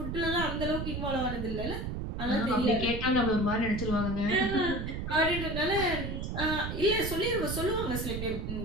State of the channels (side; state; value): right; noise; rumble, 4 dB below the sound